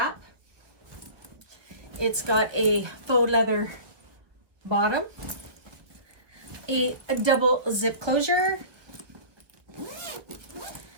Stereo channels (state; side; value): late; left; 1.0 ms